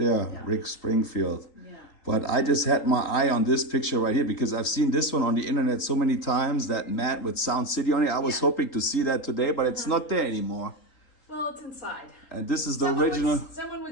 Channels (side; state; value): right; late; 3.9 ms